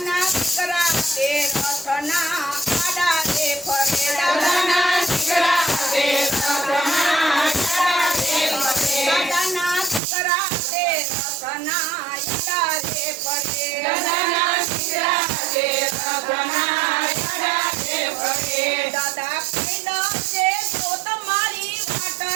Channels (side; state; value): left; drops out; at 10.0 s